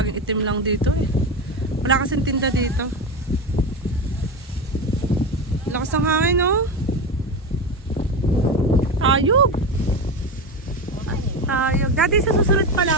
itim lang dito eh. Wala kasing tinda dito. Lakas ng hangin no? Ayog! Ayog. Dati sa susunod pala,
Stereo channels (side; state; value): both; normal; correlation 0.20